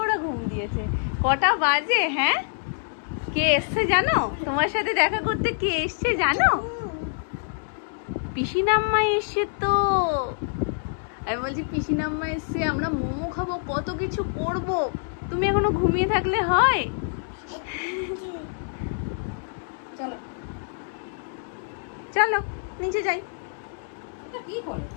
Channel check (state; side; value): silent; right; digital silence